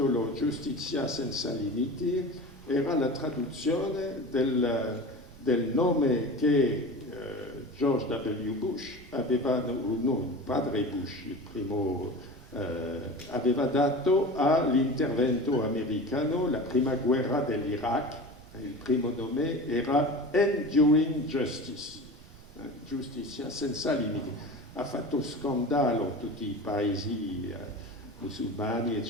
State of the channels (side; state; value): right; noise; rumble, 21 dB below the sound